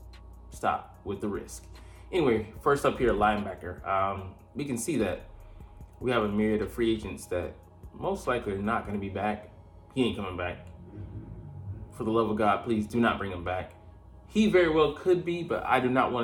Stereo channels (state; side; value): identical; both; correlation 1.00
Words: stop with the risk. Anyway, first up here, linebacker. We can see that we have a myriad of free agents that most likely are not going to be back. He ain't coming back. For the love of God, please do not bring him back. He very well could be, but I do not